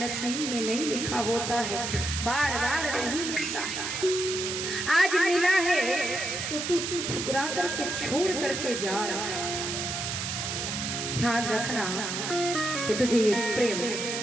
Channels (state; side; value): noise; right; hiss, 3 dB below the sound